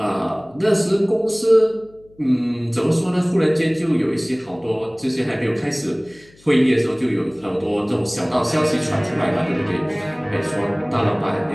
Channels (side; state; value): left; noise; hum, 28 dB below the sound